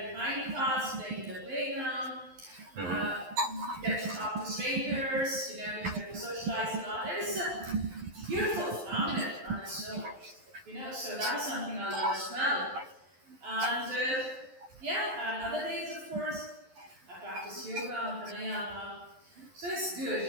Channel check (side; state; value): left; late; 11 ms